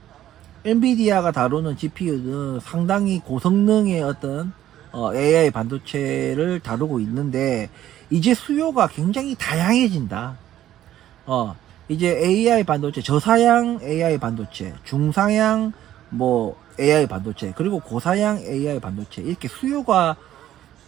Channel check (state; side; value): quieter; left; 12.5 dB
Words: 엔비디아가 다루는 GPU는 상당히 고성능의 어떤 AI 반도체를 다루고 있는데 이제 수요가 굉장히 다양해진다. 이제 AI 반도체, 저사양 AI 반도체, 중사양 뭐 AI 반도체, 그리고 고사양 AI 반도체 이렇게 수요가